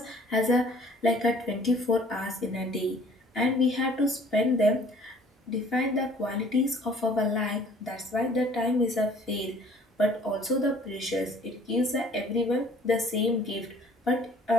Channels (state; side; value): normal; both; correlation 0.54